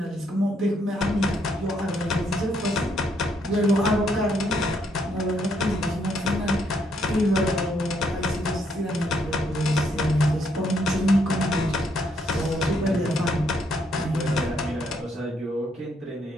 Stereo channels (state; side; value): normal; both; correlation 0.73